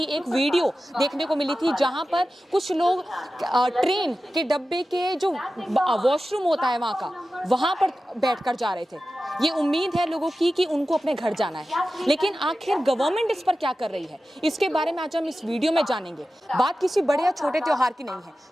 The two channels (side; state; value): both; normal; correlation 0.94